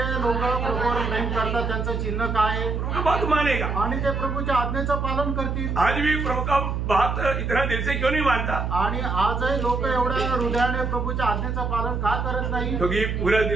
लोक प्रभूवर प्रेम करतात त्यांचं चिन्ह काय आहे? प्रभु का बात मानेगा. आणि ते प्रभूच्या आज्ञेचं पालन करतील. आज भी प्रभु का बात इतना दिल से क्यों नहीं मानता? आणि आजही लोक एवढ्या हृदयाने प्रभूच्या आज्ञेचं पालन का करत नाही? क्योंकि पूरा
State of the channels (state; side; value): noise; right; hum, 1 dB below the sound